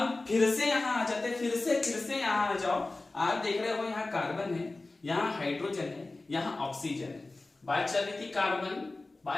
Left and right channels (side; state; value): right; quieter; 3.2 dB